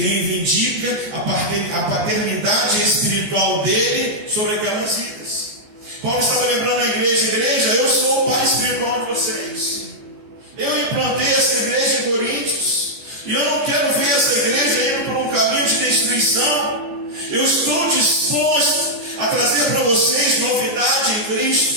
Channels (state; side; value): late; left; 14 ms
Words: reivindica a paternidade espiritual dele sobre aquelas vidas. Paulo estava lembrando a igreja: eu sou o pai espiritual de vocês. Eu implantei essa igreja em Coríntios, e eu não quero ver essa igreja indo por um caminho de destruição. Eu estou disposto a trazer para vocês novidade em